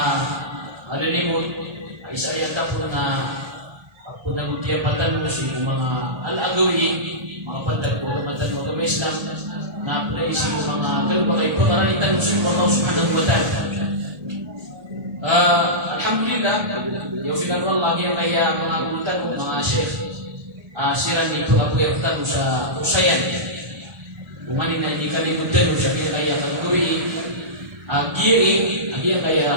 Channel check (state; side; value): late; left; 1.3 ms